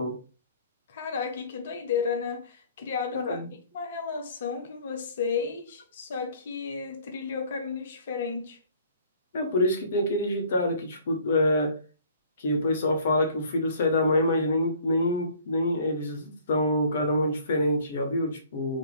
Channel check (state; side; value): inverted; both; correlation -0.55